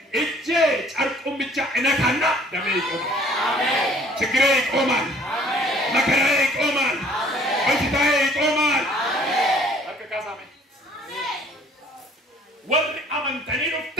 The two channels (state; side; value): normal; both; correlation 0.55